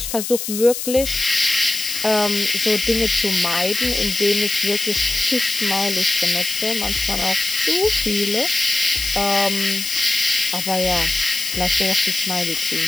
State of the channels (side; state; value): left; noise; hiss, 5 dB below the sound